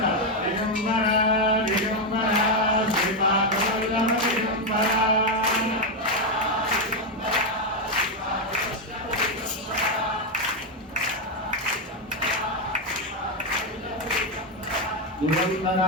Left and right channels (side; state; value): both; normal; correlation 0.05